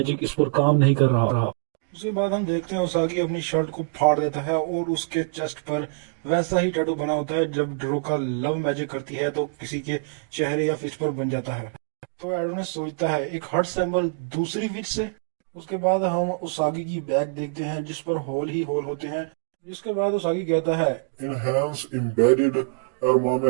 इस पर काम नहीं कर रहा। उसके बाद हम देखते हैं उसागी अपनी शर्ट को फाड़ देता है और उसके चेस्ट पर वैसा ही टैटू बना होता है जब ड्रोका लव मैजिक करती है तो किसी के चेहरे या फेस पर बन जाता है। तो एडोनिस सोचता है एक हार्ट सिंबल दूसरी विच से। उसके बाद हम उसागी की बैग देखते हैं जिस पर होल ही होल होते हैं। जिसके बाद उसागी कहता है Enhance embedded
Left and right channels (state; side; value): quieter; left; 37.9 dB